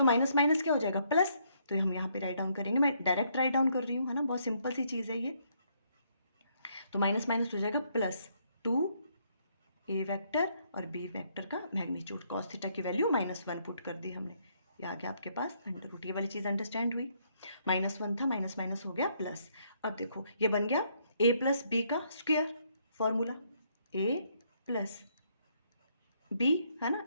माइनस माइनस क्या हो जाएगा, प्लस, तो हम यहाँ पे राइट डाउन करेंगे, मैं डायरेक्ट राइट डाउन कर रही हूँ, है ना, बहुत सिंपल सी चीज़ है ये, तो माइनस माइनस हो जाएगा प्लस 2a वेक्टर और b वेक्टर का मैग्नीट्यूड, cos थीटा की वैल्यू -1 पुट कर दी हमने, ये आ गया आपके पास अंडर रूट, ये वाली चीज़ अंडरस्टैंड हुई, -1 था माइनस माइनस हो गया प्लस। अब देखो ये बन गया a प्लस बी का square, formula a plus B, है ना,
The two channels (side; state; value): both; inverted; correlation -0.71